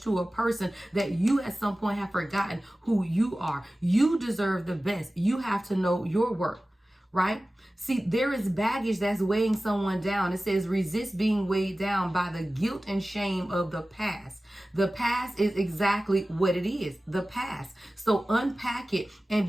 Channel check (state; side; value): normal; both; correlation 0.96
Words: to a person that you at some point have forgotten who you are. You deserve the best. You have to know your worth, right? See, there is baggage that's weighing someone down. It says resist being weighed down by the guilt and shame of the past. The past is exactly what it is, the past. So unpack it and